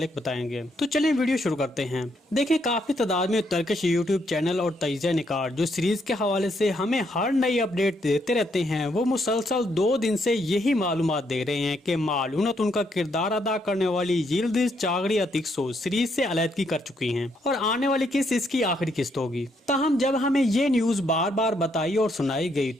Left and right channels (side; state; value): both; normal; correlation 0.74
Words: बताएंगे। तो चलें वीडियो शुरू करते हैं। देखिए, काफी तादाद में टर्किश यूट्यूब चैनल और तजिया निकार जो सीरीज के हवाले से हमें हर नई अपडेट देते रहते हैं, वो मुसलसल 2 दिन से यही मालूमात दे रहे हैं कि मालूनतुन का किरदार अदा करने वाली यिल्दिज चागरी अतिक्सो सीरीज से अलहदगी कर चुकी हैं और आने वाली किस्त इसकी आखिरी किस्त होगी। ताहम जब हमें ये न्यूज बार बार बताई और सुनाई गई